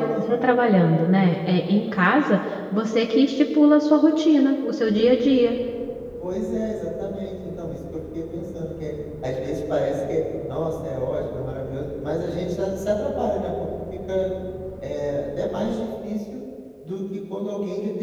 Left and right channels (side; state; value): both; identical; correlation 1.00